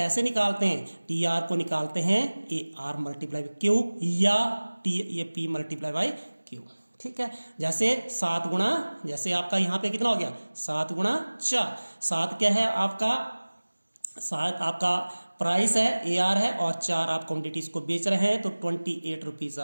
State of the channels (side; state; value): both; inverted; correlation -1.00